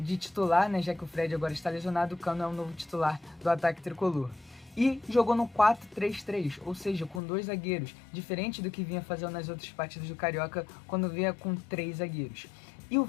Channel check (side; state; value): right; drops out; at 7.2 s